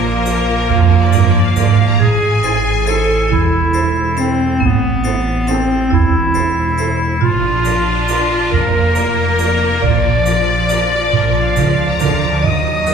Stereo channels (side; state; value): both; normal; correlation 0.61